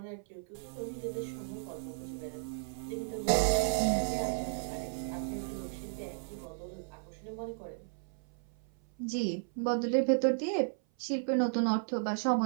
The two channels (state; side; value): silent; left; 55 dB below the other